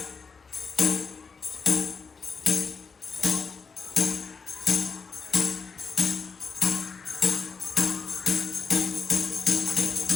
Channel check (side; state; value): right; quieter; 5.1 dB